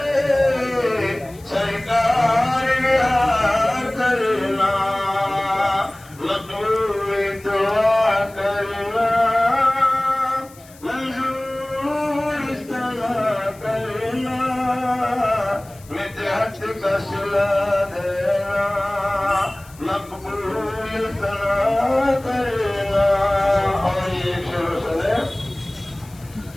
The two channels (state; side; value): noise; left; hiss, 24 dB below the sound